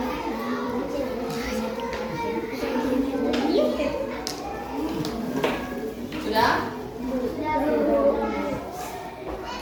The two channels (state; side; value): identical; both; correlation 1.00